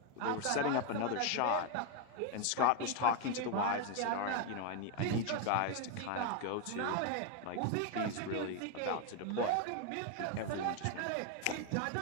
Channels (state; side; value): different; both; correlation 0.01